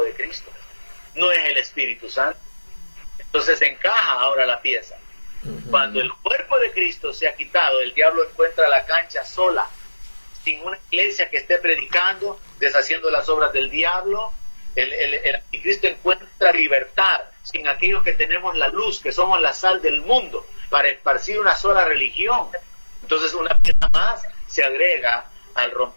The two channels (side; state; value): both; inverted; correlation -1.00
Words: de Cristo, no es el Espíritu Santo. Entonces encaja ahora la pieza. Cuando el cuerpo de Cristo sea quitado, el diablo encuentra la cancha sola, sin una iglesia que esté predicando, deshaciendo las obras del diablo. El anticristo encuentra libertad sin aquellos que tenemos la luz, que somos la sal del mundo, para esparcir una sola religión. Entonces una pieza más se agrega al